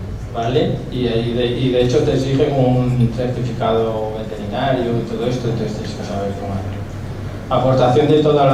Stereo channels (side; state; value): both; identical; correlation 1.00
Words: ¿vale? Y de hecho te exigen un certificado veterinario y todo esto, entonces tienes que saber cómo hacerlo. Aportación de toda